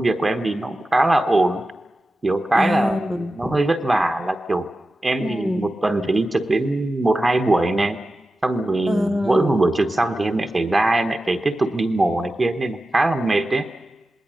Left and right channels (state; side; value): normal; both; correlation 0.93